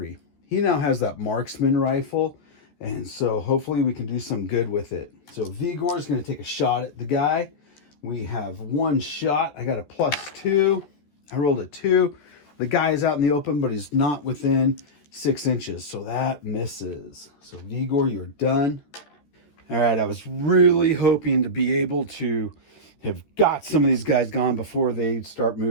He now has that marksman rifle, and so hopefully we can do some good with it. So Vigor is going to take a shot at the guy. We have 1 shot. I got a +2. I rolled a 2. The guy is out in the open, but he's not within 6 inches, so that misses. So Vigor, you're done. All right, I was really hoping to be able to have got some of these guys gone before they start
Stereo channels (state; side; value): late; right; 14 ms